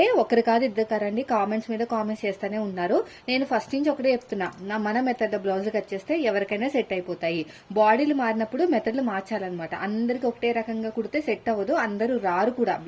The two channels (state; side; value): identical; both; correlation 1.00